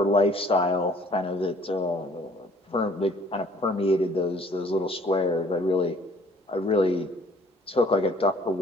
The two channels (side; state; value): both; normal; correlation 0.57